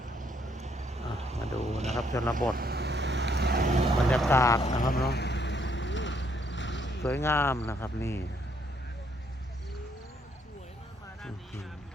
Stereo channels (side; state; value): both; normal; correlation 0.70